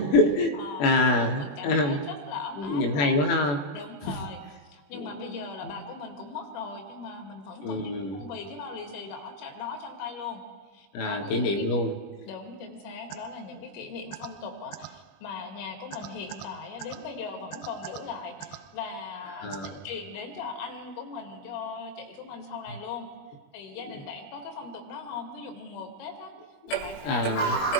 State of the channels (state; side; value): late; right; 21 ms